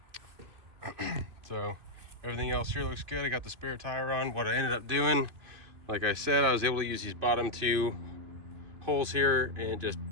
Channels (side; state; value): left; late; 2.6 ms